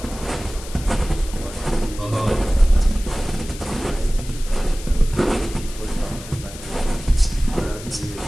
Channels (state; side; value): noise; left; hiss, 15 dB below the sound